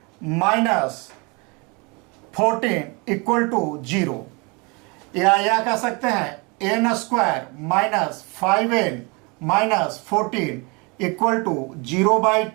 minus 14 equal to 0। या कह सकते हैं n square minus 5n minus 14 equal to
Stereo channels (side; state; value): left; quieter; 29.5 dB